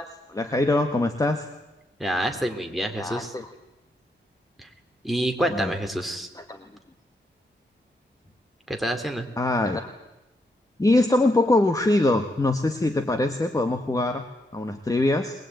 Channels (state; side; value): normal; both; correlation 0.79